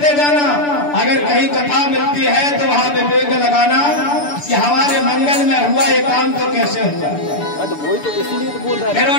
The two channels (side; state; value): right; late; 6.9 ms